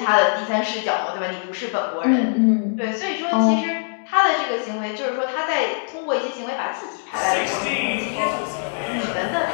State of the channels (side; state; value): right; silent; digital silence